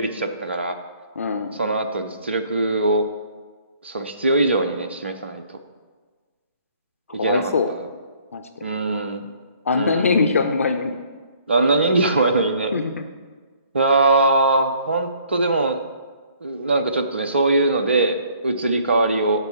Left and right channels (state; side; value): inverted; both; correlation -0.60